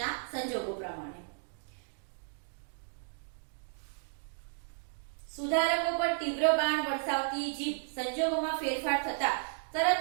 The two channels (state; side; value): silent; left; digital silence